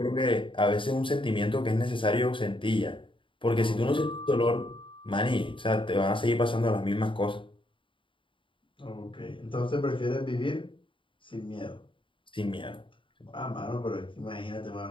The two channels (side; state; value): right; late; 0.25 ms